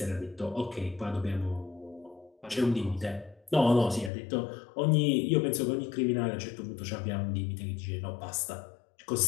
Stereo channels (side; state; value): right; drops out; at 4.1 s